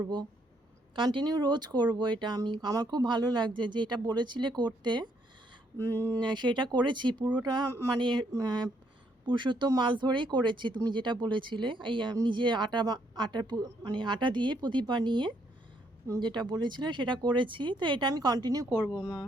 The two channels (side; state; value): both; normal; correlation 0.72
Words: কন্টিনিউ রোজ করব। এটা আমার খুব ভালো লাগছে যে এটা বলেছিলে করতে, সেটা করেছি পুরোটা। মানে পুরুষোত্তম মাস ধরেই করেছি তুমি যেটা বলেছিলে, এই নিজে মানে আটা দিয়ে প্রদীপ বানিয়ে যেটা বলেছিলে সেটা করেছি। তো এটা আমি কন্টিনিউ করব মা,